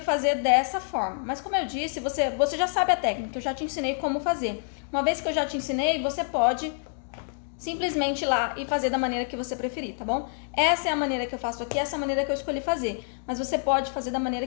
fazer dessa forma. Mas como eu disse, você já sabe a técnica, eu já te ensinei como fazer. Uma vez que eu já te ensinei, você pode simplesmente ir lá e fazer da maneira que você preferir, tá bom? Essa é a maneira que eu faço aqui, essa é a maneira que eu escolhi fazer. Mas você pode fazer da maneira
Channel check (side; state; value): right; silent; digital silence